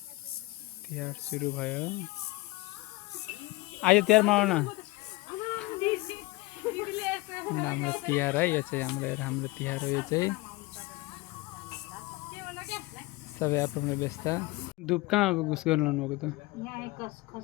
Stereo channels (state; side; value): quieter; right; 22.0 dB